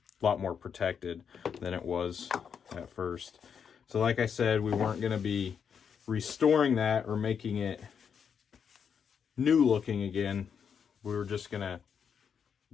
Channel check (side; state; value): right; quieter; 7.2 dB